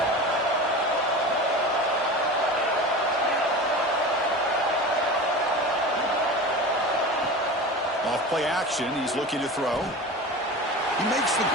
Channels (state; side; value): normal; both; correlation 0.31